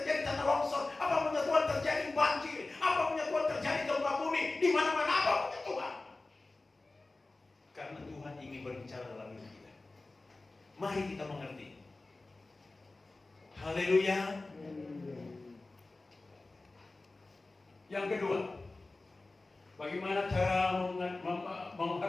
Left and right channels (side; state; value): right; quieter; 3.2 dB